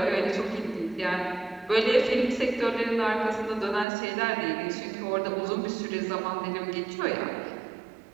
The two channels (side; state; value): left; drops out; at 3.9 s